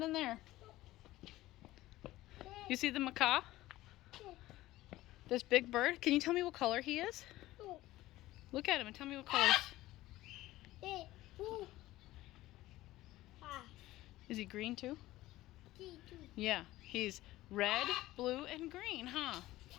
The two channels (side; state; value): right; quieter; 16.7 dB